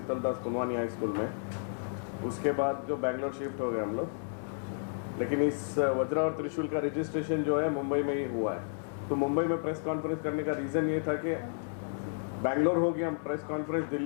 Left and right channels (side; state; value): right; silent; digital silence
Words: Kunwani high school में। उसके बाद जो बैंगलोर शिफ्ट हो गए हम लोग, लेकिन इस वज्रा और त्रिशूल का रजिस्ट्रेशन जो है मुंबई में ही हुआ है। तो मुंबई में प्रेस कॉन्फ्रेंस करने का रीज़न ये था कि बैंगलोर हो गया, प्रेस कॉन्फ्रेंस